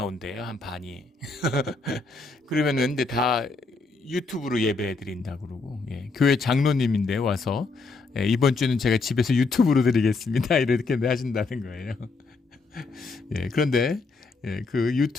한 반이. 그러면은 근데 다 유튜브로 예배 드린다 그러고, 예, 교회 장로님인데 와서, 예, 이번 주는 제가 집에서 유튜브로 드리겠습니다. 이렇게 하신다는 거예요. 예, 그런데 예, 그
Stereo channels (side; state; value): right; quieter; 4.0 dB